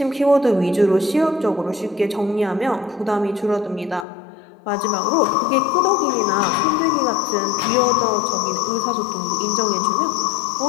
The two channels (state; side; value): drops out; right; at 4.0 s